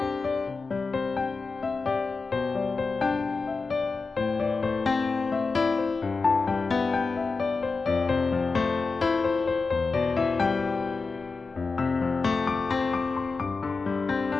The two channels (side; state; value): right; quieter; 4.2 dB